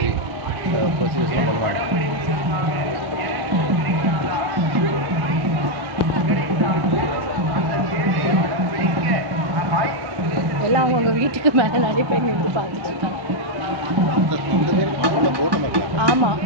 ப்ரொசீஜர்ஸ்லாம் பண்ணுவாங்க. எல்லாம் அவங்கவுங்க வீட்டுக்கு மேலே நிறைய பேர் நின்று பார்த்துட்டு இருக்காங்க. ஆமாம்,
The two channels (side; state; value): left; late; 1.1 ms